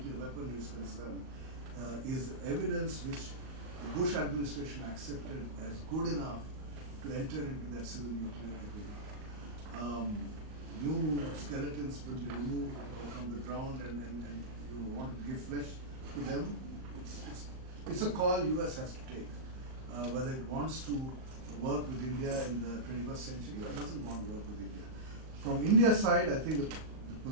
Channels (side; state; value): left; late; 38 ms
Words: weaponry is concerned, is evidence which the Bush administration accepted as good enough to enter into that civil nuclear agreement. New skeletons will be removed from the ground and you want to give flesh to them. It's a call US has to take, whether it wants to work with India in the 21st century or doesn't want to work with India. From India's side, I think the